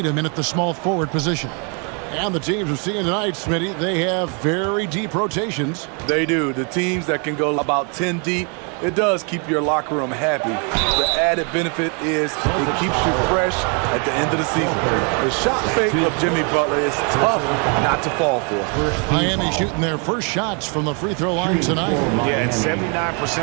in at the small forward position. And the teams we're seeing tonight, Smitty, they have very deep rotations. They do. The teams that can go about 10 deep, it does keep your locker room happy. The added benefit is it keeps you fresh at the end of the season. The shot fake of Jimmy Butler is tough not to fall for. Miami shooting their first shots from the free throw line tonight. Yeah, and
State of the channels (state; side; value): quieter; left; 36.3 dB